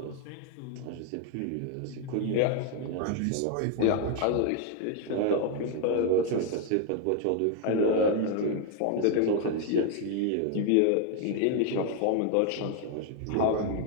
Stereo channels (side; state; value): both; different; correlation 0.00